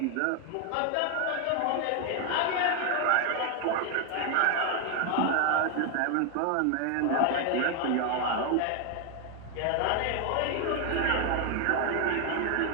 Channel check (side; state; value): both; different; correlation 0.01